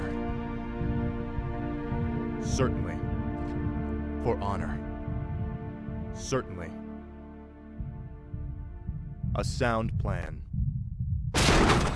Certainly. For honor. Certainly. A sound plan.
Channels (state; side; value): identical; both; correlation 1.00